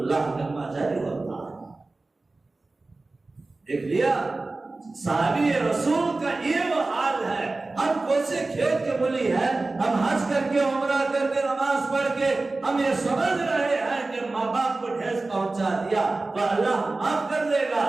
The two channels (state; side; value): quieter; left; 3.3 dB